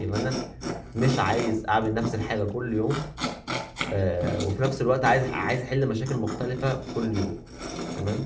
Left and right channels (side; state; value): both; identical; correlation 1.00